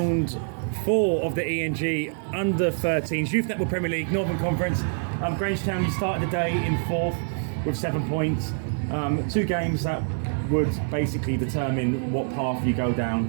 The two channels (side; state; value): left; silent; digital silence